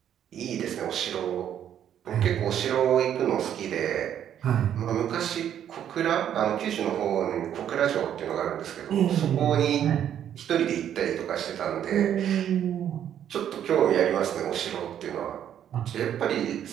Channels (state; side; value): quieter; left; 9.9 dB